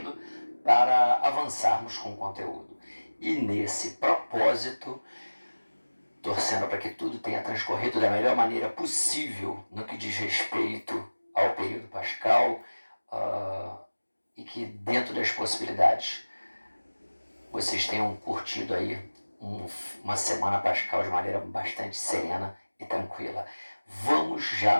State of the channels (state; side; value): inverted; both; correlation -1.00